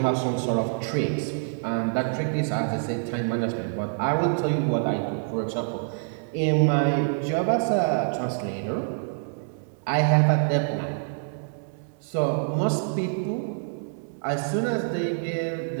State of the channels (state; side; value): silent; left; digital silence